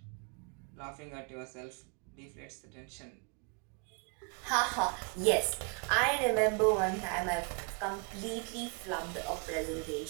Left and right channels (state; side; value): quieter; left; 36.0 dB